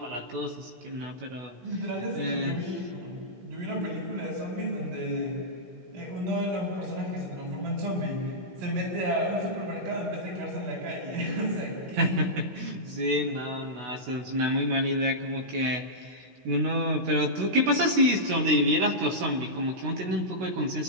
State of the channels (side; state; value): left; late; 16 ms